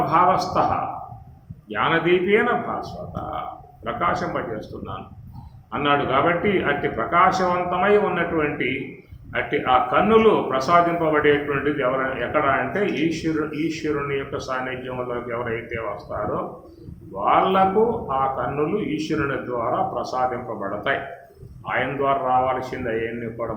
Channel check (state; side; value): identical; both; correlation 1.00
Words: జ్ఞానదీపేన భాస్వత, ప్రకాశింపజేస్తున్నాను అన్నాడు. కాబట్టి అట్టి ప్రకాశవంతమై ఉన్నటువంటి అట్టి ఆ కన్నులు ప్రసాదింపబడేటువంటిది ఎక్కడ అంటే ఈశ్వరుని యొక్క సాన్నిధ్యంలోకి ఎవరైతే వస్తారో వాళ్లకు ఆ కన్నులు ఈశ్వరుని ద్వారా ప్రసాదింపబడతాయి. ఆయన ద్వారా రావాల్సింది అవన్నీ కూడా